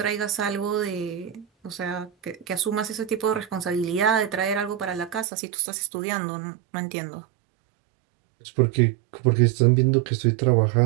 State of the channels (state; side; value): drops out; left; at 5.2 s